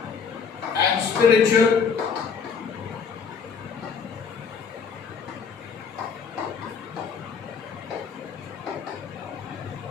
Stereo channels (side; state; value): right; quieter; 6.1 dB